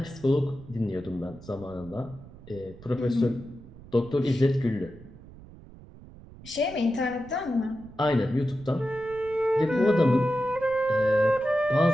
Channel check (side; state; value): right; noise; rumble, 19 dB below the sound